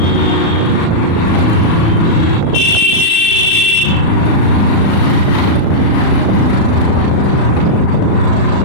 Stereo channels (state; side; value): late; right; 36 ms